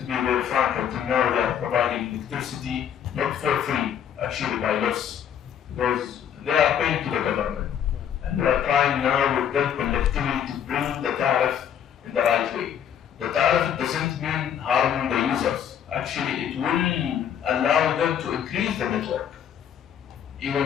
be very frank, until now they are providing electricity not for free, actually by loss, because they are paying to the government. And we are trying now with them collectively to bring the tariff in the right way. The tariff doesn't mean harming the users. Actually, it will allow them to increase the network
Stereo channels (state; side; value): quieter; right; 9.1 dB